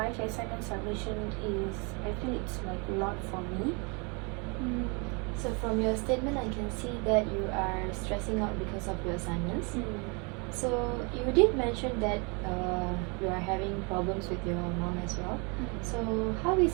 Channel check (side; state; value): left; quieter; 32.4 dB